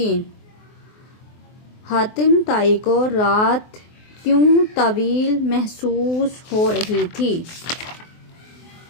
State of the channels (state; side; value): late; right; 24 ms